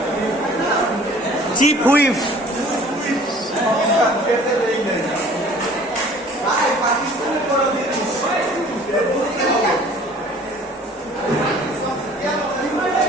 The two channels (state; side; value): normal; both; correlation 0.51